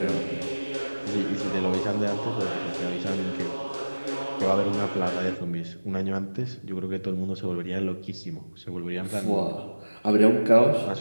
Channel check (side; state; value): both; inverted; correlation -1.00